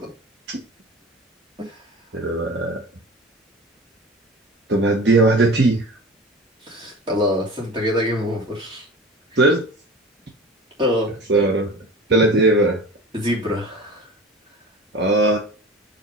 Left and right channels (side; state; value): both; normal; correlation 0.36